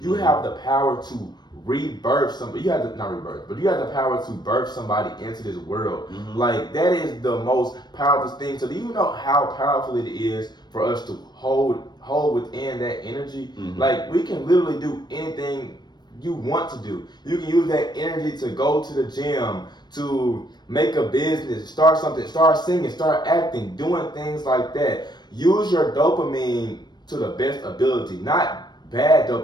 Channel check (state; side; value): late; right; 0.21 ms